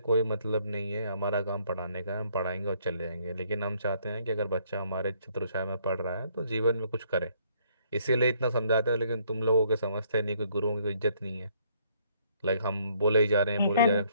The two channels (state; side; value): inverted; both; correlation -0.66